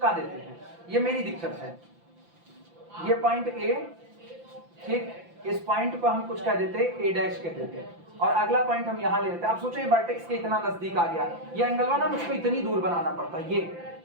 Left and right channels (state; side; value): late; left; 5.9 ms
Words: देते हैं। ये मेरी दिक्कत है। ये पॉइंट ए ठीक, इस पॉइंट को हम कुछ कह देते ए डैश कह देते और अगला पॉइंट हम यहाँ ले लेते। आप सोचो ये वर्टेक्स के इतना नजदीक आ गया, ये एंगल वाला मुझको इतनी दूर बनाना पड़ता। ये